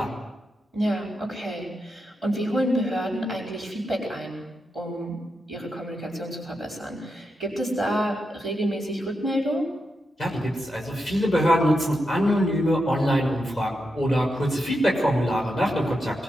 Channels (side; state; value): both; normal; correlation 0.86